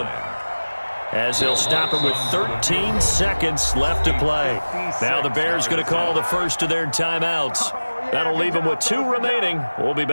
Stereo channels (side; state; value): both; inverted; correlation -1.00